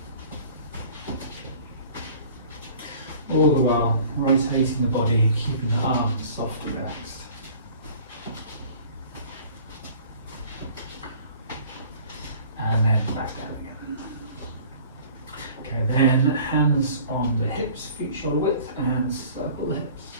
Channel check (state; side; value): inverted; both; correlation -0.48